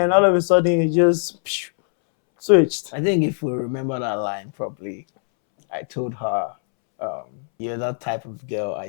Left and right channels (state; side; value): silent; right; 65 dB below the other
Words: all of a sudden it just switched. I think if we remember that line properly, I told her, you're that type of girl